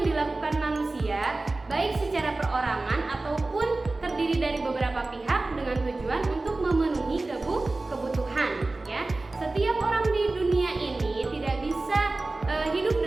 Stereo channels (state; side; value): quieter; left; 3.1 dB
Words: dilakukan manusia baik secara perorangan ataupun terdiri dari beberapa pihak dengan tujuan untuk memenuhi kebutuhan ya. Setiap orang di dunia ini tidak bisa hidup